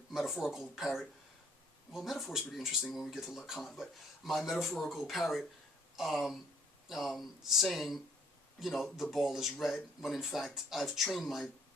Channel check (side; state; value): both; normal; correlation 0.62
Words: metaphorical parrot. Well, metaphor is pretty interesting when we get to Lacan, but my metaphorical parrot saying, the ball is red, when in fact I've trained my